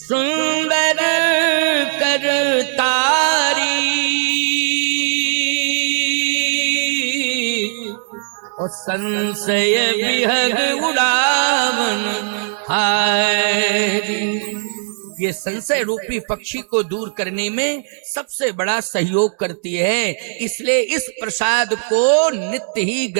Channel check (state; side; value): silent; left; digital silence